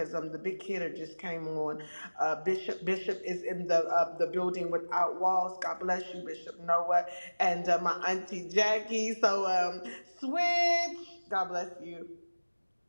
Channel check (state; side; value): inverted; both; correlation -1.00